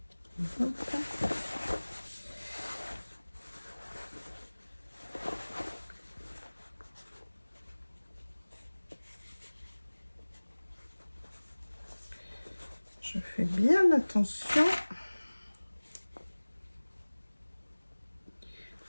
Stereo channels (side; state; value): both; inverted; correlation -1.00